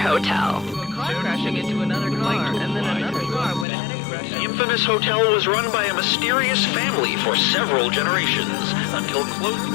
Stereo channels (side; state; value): right; drops out; at 3.7 s